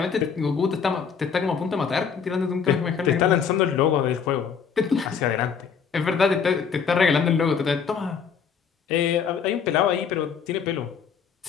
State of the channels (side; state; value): right; quieter; 6.6 dB